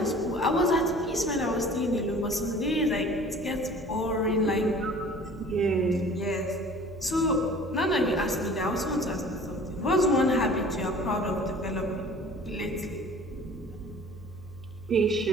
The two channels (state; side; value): noise; left; hum, 19 dB below the sound